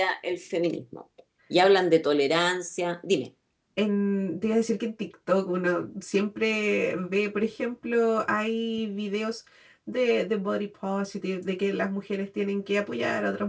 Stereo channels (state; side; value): identical; both; correlation 1.00